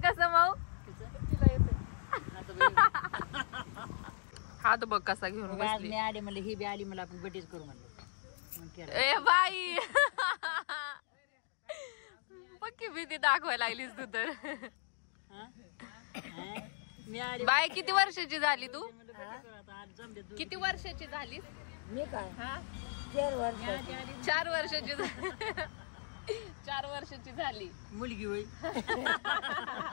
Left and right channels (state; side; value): silent; right; digital silence